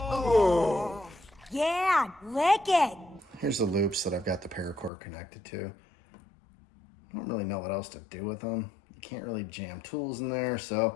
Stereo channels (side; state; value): right; drops out; at 4.9 s